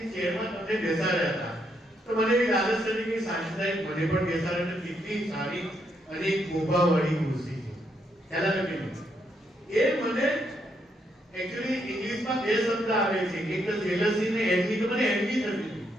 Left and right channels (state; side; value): normal; both; correlation 0.77